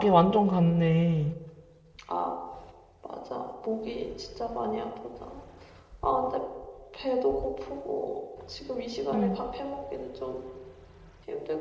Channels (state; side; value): identical; both; correlation 1.00